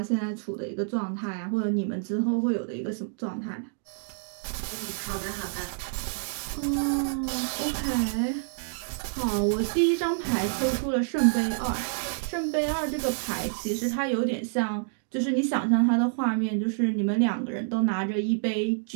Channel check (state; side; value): silent; left; digital silence